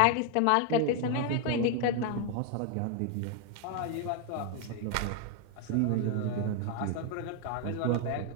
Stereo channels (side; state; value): both; different; correlation 0.01